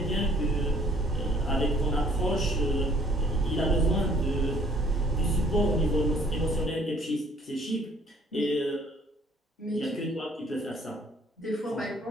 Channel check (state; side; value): normal; both; correlation 0.58